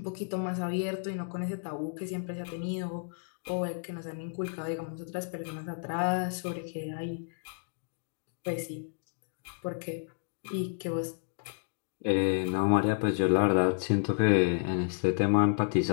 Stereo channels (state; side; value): silent; right; digital silence